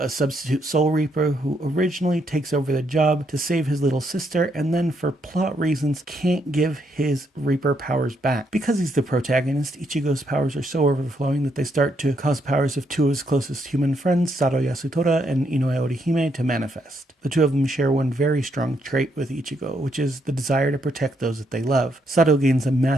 substitute soul reaper who originally takes over the job to save his little sister and then for plot reasons can't give his reaper powers back. Because he's the protagonist, Ichigo's powers are so overflowing that they start to cause powers of two of his closest human friends, Sado Yasutora and Inoue Orihime, to manifest. The two of them share one very strong trait with Ichigo, which is the desire to protect those that they love. Sado gains a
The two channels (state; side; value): normal; both; correlation 0.76